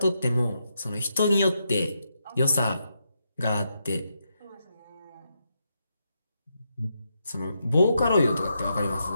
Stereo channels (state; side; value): inverted; both; correlation -0.83